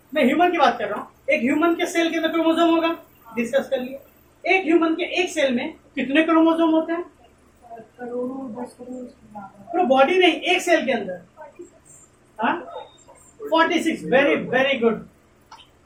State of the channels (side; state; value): both; identical; correlation 1.00